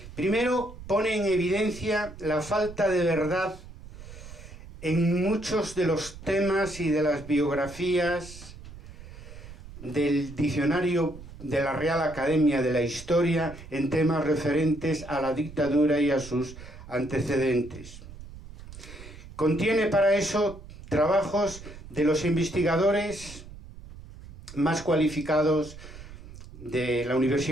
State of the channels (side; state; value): right; noise; rumble, 16 dB below the sound